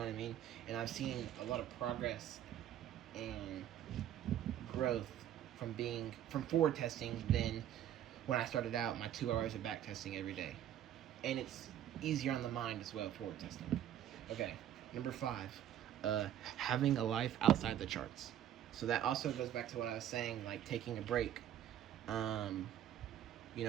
what I mean? And I've seen a lot of progress and growth from forward testing than when I started out my 2 hours of back testing every day. And it's easier on the mind as well, forward testing. Okay, number 5, having a life outside the charts. So that also goes back to what I was saying, like taking a break. You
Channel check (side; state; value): left; quieter; 11.1 dB